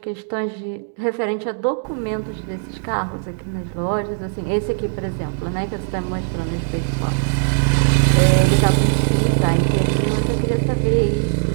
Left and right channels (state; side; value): silent; left; digital silence